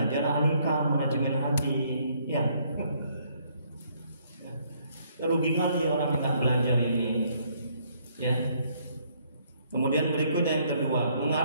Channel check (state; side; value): inverted; both; correlation -0.67